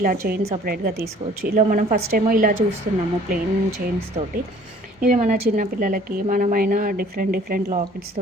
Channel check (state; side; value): normal; both; correlation 0.54